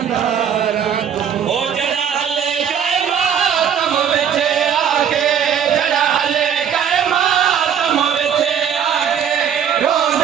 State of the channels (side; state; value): left; quieter; 8.3 dB